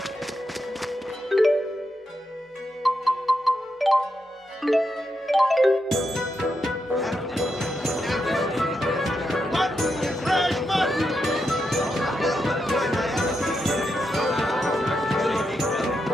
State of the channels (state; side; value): normal; both; correlation 0.84